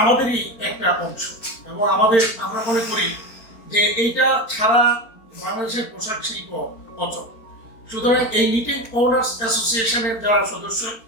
আমাদেরই একটা অংশ এবং আমরা মনে করি যে এইটা ছাড়া বাংলাদেশের পোশাক শিল্প অচল। সুতরাং এই নিটিং ওনার্স অ্যাসোসিয়েশনের যারা সদস্য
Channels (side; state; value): right; late; 4.4 ms